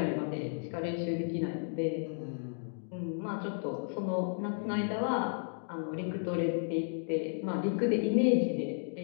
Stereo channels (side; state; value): right; silent; digital silence